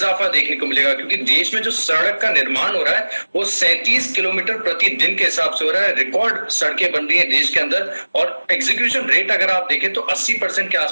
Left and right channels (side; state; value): both; inverted; correlation -1.00